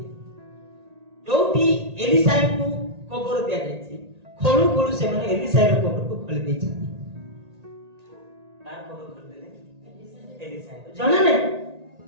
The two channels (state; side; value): late; left; 1.9 ms